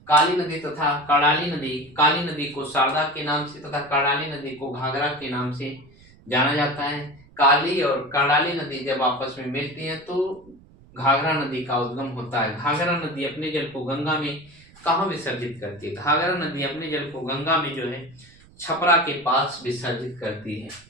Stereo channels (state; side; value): noise; right; rumble, 26 dB below the sound